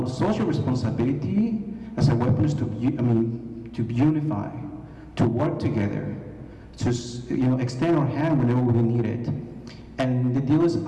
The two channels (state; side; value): identical; both; correlation 1.00